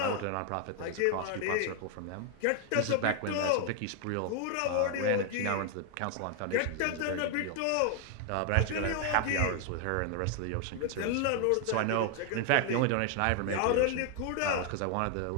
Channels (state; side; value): different; both; correlation 0.00